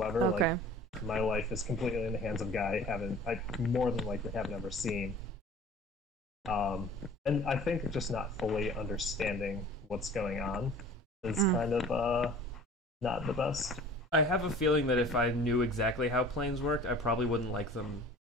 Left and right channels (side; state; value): both; normal; correlation 0.45